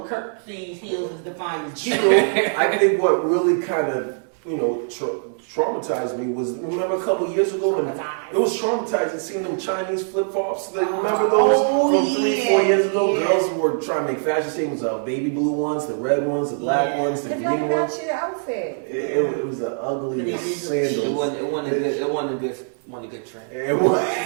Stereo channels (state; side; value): silent; left; digital silence